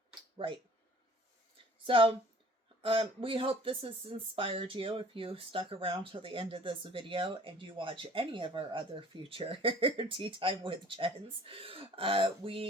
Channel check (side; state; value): both; normal; correlation 0.51